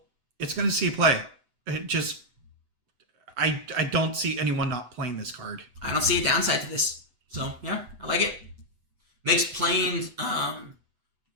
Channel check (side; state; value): left; late; 8.0 ms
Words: It's going to see play. It just... I don't see anyone not playing this card. I don't see a downside to this. So, yeah, I like it. Makes playing...